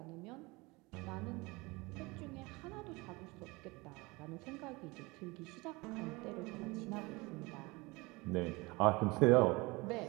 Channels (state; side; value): quieter; left; 24.3 dB